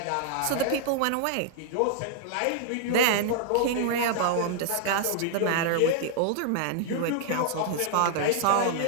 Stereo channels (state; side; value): different; both; correlation -0.01